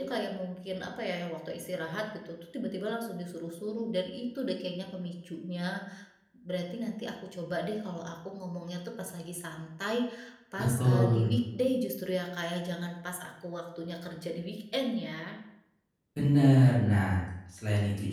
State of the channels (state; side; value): identical; both; correlation 1.00